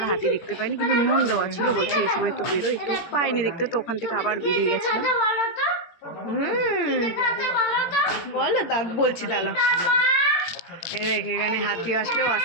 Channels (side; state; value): right; late; 17 ms